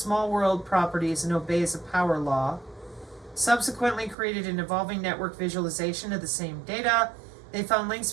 world properties and obeys a power law. Subsequently created an evolving network visualization of the same data. They found links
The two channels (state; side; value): drops out; left; at 4.2 s